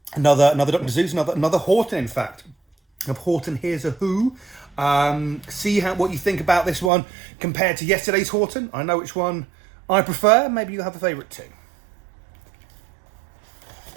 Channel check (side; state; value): left; drops out; at 6.9 s